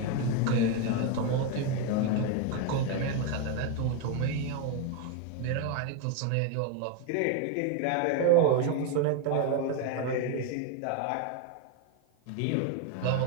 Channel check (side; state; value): both; different; correlation 0.02